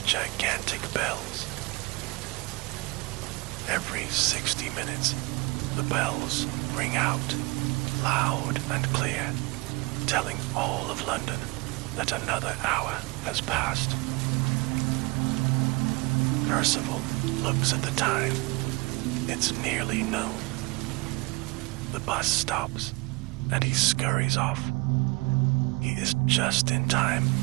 gigantic bells. Every 60 minutes, the bells ring out, loud and clear, telling all of London that another hour has passed. Percival looks at the time. It's nearly noon. The bus stops, and he scurries off. He is just in time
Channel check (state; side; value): quieter; left; 25.9 dB